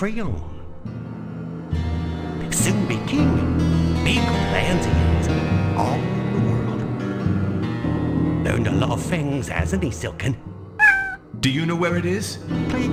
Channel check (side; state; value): both; identical; correlation 1.00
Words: Soon be king. Big plans he has, all the world. Learned a lot of things, hasn't he, Silken? Do you know where it is? Play